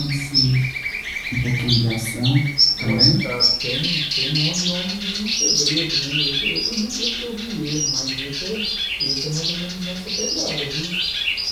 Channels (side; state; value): both; identical; correlation 1.00